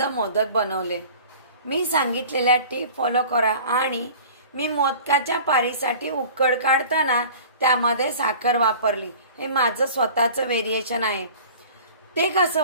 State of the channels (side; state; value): both; inverted; correlation -0.43